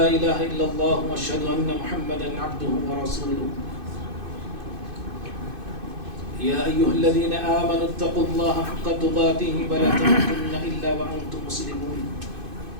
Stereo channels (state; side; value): late; left; 2.5 ms